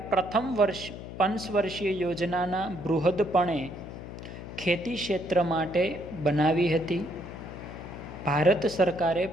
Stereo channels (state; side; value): noise; left; hum, 11 dB below the sound